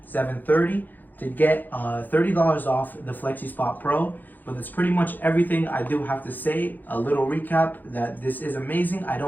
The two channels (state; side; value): late; right; 0.086 ms